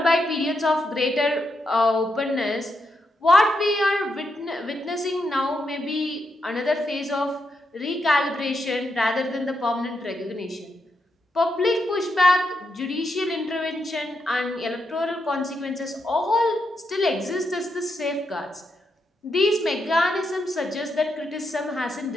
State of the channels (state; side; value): normal; both; correlation 0.83